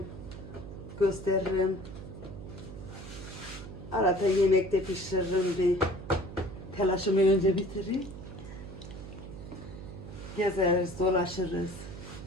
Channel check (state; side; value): noise; right; hum, 12 dB below the sound